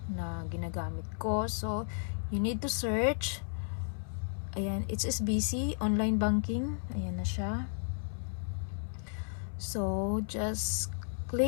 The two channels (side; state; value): right; silent; 55 dB below the other